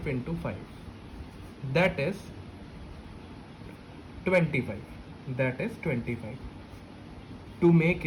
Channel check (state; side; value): identical; both; correlation 1.00